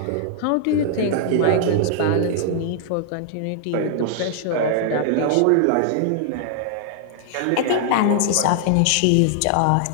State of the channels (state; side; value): different; both; correlation -0.01